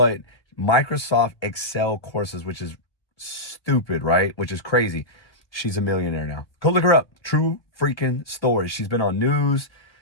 Microsoft Excel courses, which is stupid, right? Which is crazy. She's a millionaire now. Go look her up. True freaking story. She's been on news.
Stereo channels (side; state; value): right; late; 1.2 ms